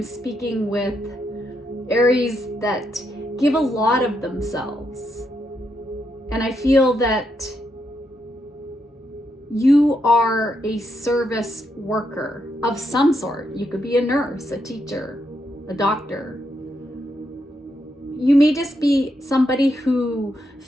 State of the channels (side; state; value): both; normal; correlation 0.80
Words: speaking with Aries that give a lot of themselves. And I feel that you are a service worker of some sort. You could be a nurse, a teacher, a doctor. You may just be somebody who